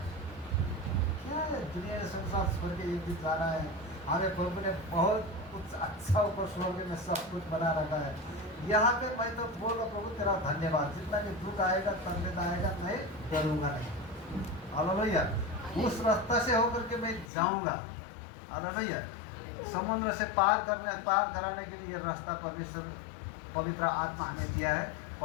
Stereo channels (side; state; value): right; drops out; at 17.3 s